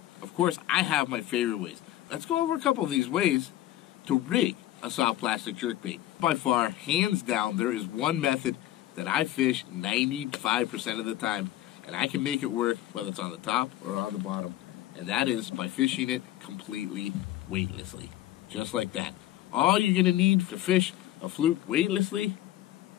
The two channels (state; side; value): quieter; right; 14.1 dB